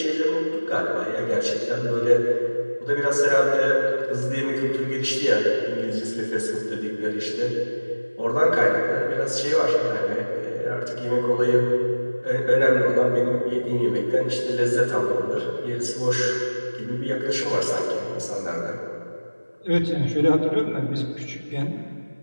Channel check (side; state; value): both; inverted; correlation -1.00